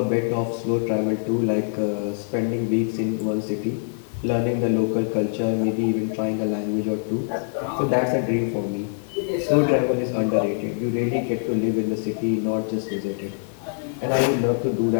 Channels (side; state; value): right; silent; 63 dB below the other